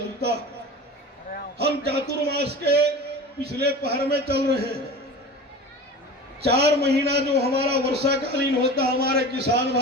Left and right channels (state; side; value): normal; both; correlation 0.34